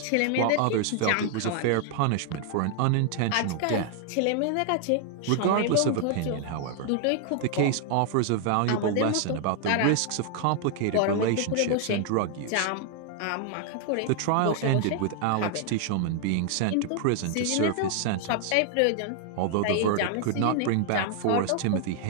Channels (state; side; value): different; both; correlation 0.00